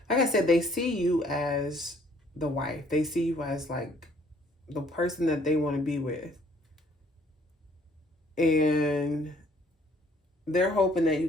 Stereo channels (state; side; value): normal; both; correlation 0.61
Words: like I said, they see you as the wife. They see you as like the person that they want to be with. And they're hoping that you